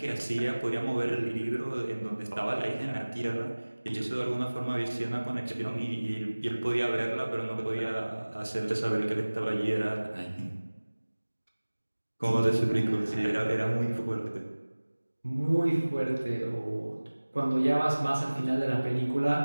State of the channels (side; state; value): both; inverted; correlation -1.00